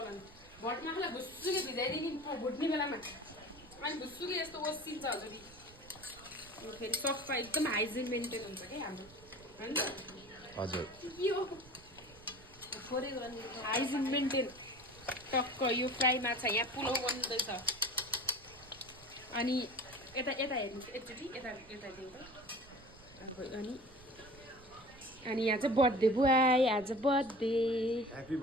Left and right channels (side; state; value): right; noise; rumble, 22 dB below the sound